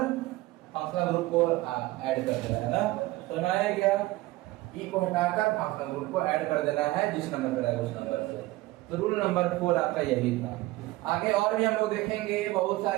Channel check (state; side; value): quieter; left; 18.9 dB